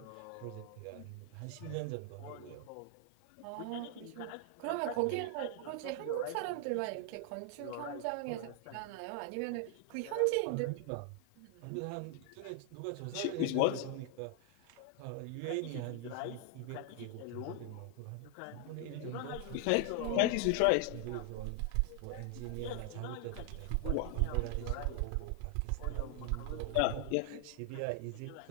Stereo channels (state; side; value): different; both; correlation 0.00